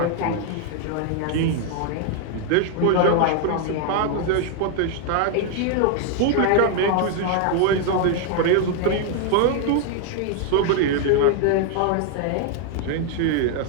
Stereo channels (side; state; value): both; different; correlation 0.00